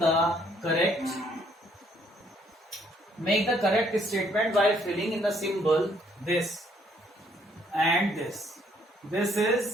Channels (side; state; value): both; normal; correlation 0.66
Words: correct statement by filling in the symbol this and this. This is